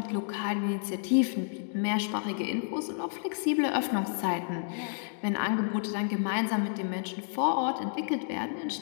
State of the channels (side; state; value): right; silent; digital silence